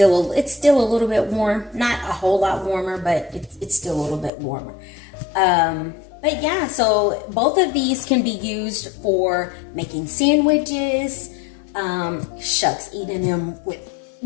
a little bit warm, not a whole lot warmer, but it's still a little bit warmer. But yeah, so both of these can be used for making sandwiches, shucks, eating them with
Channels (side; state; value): right; drops out; at 4.3 s